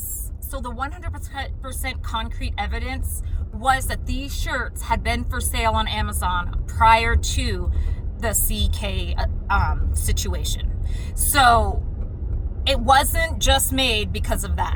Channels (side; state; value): both; identical; correlation 1.00